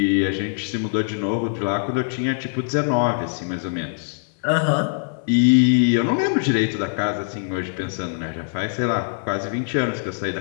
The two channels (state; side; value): silent; right; 64 dB below the other